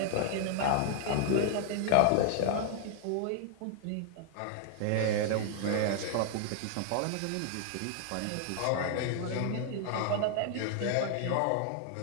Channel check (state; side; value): different; both; correlation 0.00